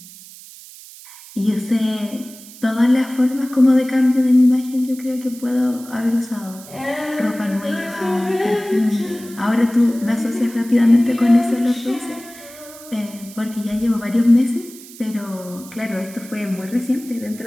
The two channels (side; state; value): right; noise; hiss, 18 dB below the sound